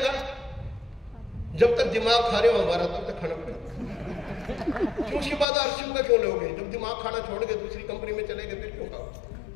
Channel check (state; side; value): drops out; right; at 5.5 s